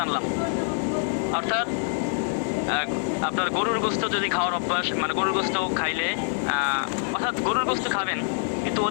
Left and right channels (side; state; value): right; silent; 61 dB below the other